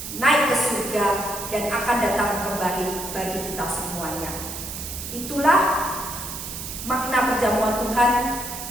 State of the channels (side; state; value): right; noise; hiss, 8 dB below the sound